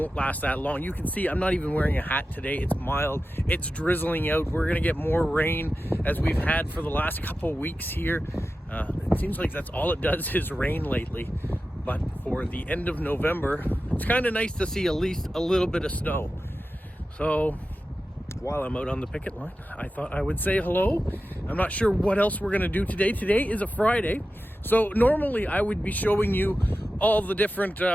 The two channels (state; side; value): normal; both; correlation 0.93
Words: last that long. You can see I'm not even wearing a hat today. It's mild. It's drizzling out. We're going to get more rain as we've had for the last couple weeks here. It seems like that's all it does is rain lately. But for the end of November, it's kind of nice to see at least a little bit of snow. So while I'm out on the picket line, I thought I would say hello. I'm not sure what else we're going to do today. Today is a Friday. So normally I would be showing you all the different